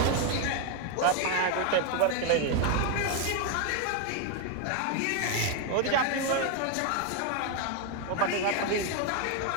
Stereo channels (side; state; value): both; different; correlation 0.01